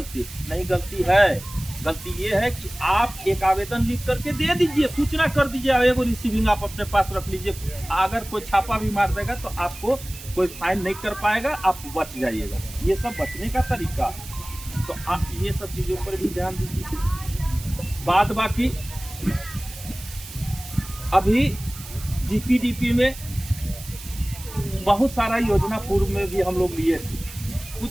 नहीं, गलती है। गलती ये है कि आप एक आवेदन लिख करके दे दीजिए, सूचना कर दीजिए, एगो रिसीविंग आप अपने पास रख लीजिए। अगर कोई छापा भी मार देगा तो आपको कोई फाइन नहीं कर पाएगा, आप बच जाइएगा। ये सब बचने का तरीका है, तो आप ये सब चीजों पर भी ध्यान दीजिए। बात बाकी अभी जीपीडीपी में बहुत सारा योजना पूर्व में भी हम लोग लिए थे।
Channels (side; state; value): right; noise; hiss, 15 dB below the sound